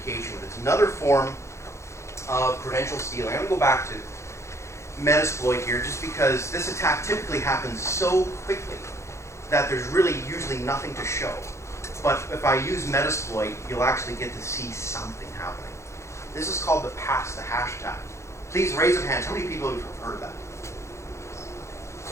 but it's another form of credential stealing. I'm going to go back to Metasploit here just because this attack typically happens so quickly that there's really usually nothing to show. But if I use Metasploit, you'll actually get to see something happening. This is called the pass the hash tag. Please raise your hands. How many people have heard of that?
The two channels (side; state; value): right; late; 0.14 ms